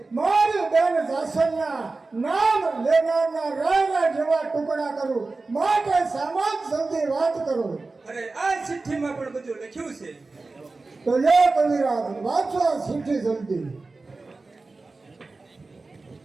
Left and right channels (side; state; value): left; quieter; 3.6 dB